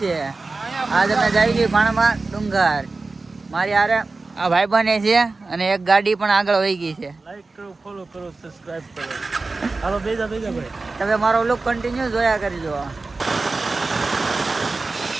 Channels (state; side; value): quieter; left; 3.6 dB